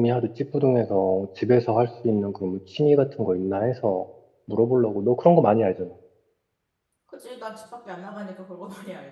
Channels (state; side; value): identical; both; correlation 1.00